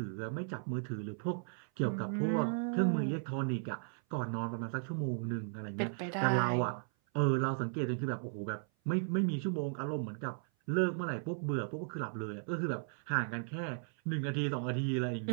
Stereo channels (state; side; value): silent; left; 54 dB below the other